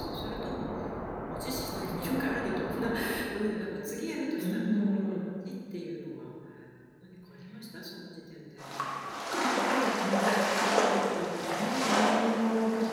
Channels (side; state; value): both; identical; correlation 1.00